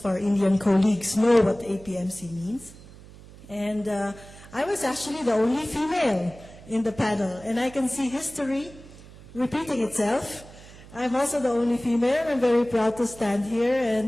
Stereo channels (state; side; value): noise; right; hum, 19 dB below the sound